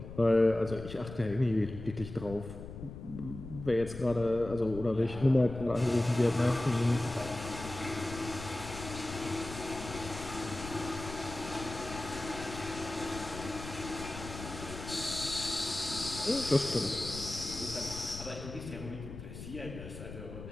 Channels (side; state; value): left; noise; rumble, 11 dB below the sound